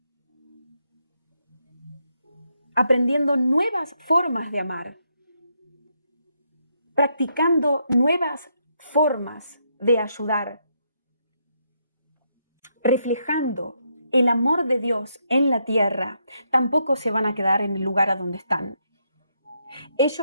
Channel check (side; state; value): both; inverted; correlation -0.78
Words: aprendiendo nuevas formas de amar, practicando nuevas formas de ayudar, reflejando el amor de Dios en la tierra, tampoco se van a quedar en el lugar a donde están.